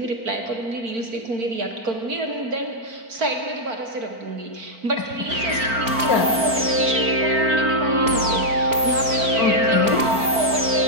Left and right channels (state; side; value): late; left; 4.4 ms